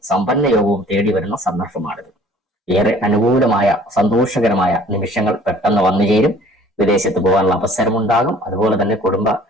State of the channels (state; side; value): normal; both; correlation 0.53